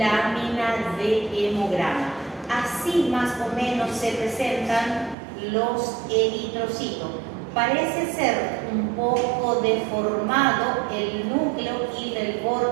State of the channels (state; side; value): drops out; left; at 5.2 s